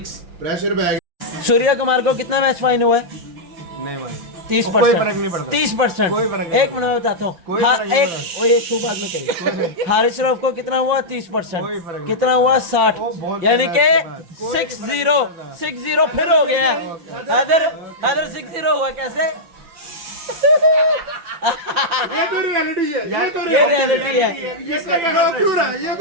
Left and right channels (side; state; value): left; late; 5.9 ms